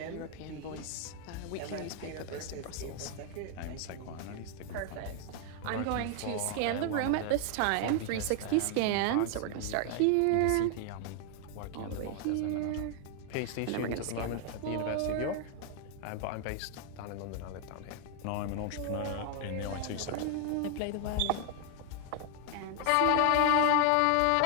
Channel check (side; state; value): both; different; correlation 0.00